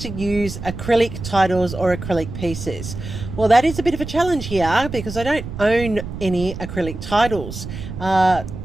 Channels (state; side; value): noise; right; rumble, 9 dB below the sound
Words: use acrylic titles or acrylic pieces. Well, that is a bit of a challenge here because I don't own any acrylic titles.